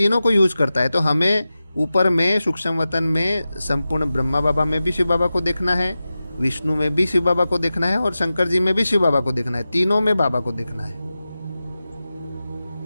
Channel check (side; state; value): both; inverted; correlation -0.94